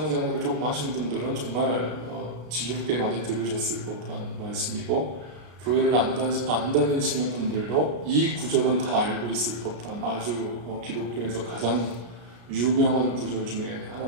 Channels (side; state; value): left; late; 33 ms